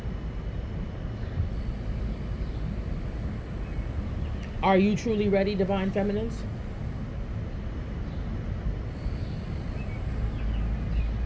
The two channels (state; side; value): identical; both; correlation 1.00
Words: Are you truly ready, divine feminines?